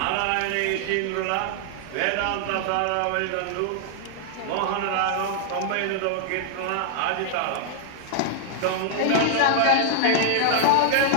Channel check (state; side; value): different; both; correlation 0.00